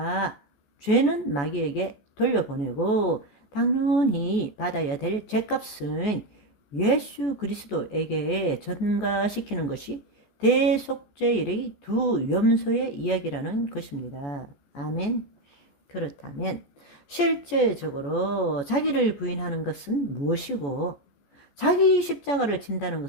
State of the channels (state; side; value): late; right; 14 ms